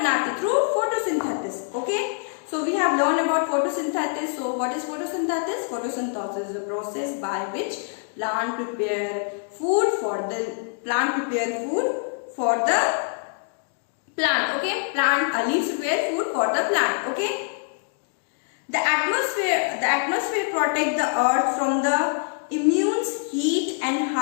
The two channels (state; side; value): silent; right; 56 dB below the other